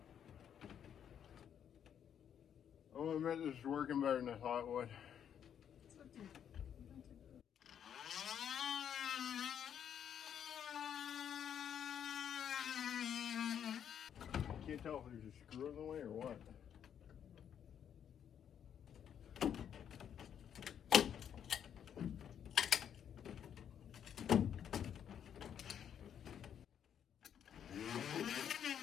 Oh, I meant this is working better than I thought it would. I can't tell if there's a screw in the way or what.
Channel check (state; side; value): quieter; right; 8.9 dB